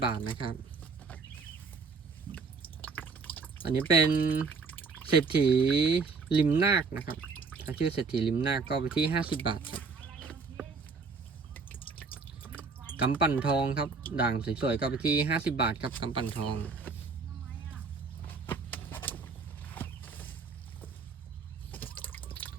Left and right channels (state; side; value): quieter; left; 4.7 dB